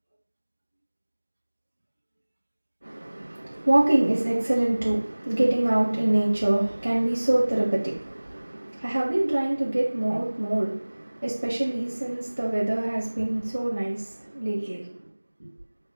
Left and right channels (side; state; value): both; inverted; correlation -1.00